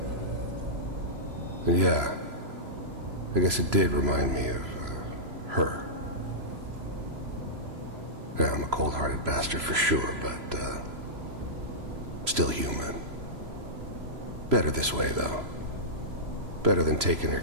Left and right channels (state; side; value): late; left; 3.0 ms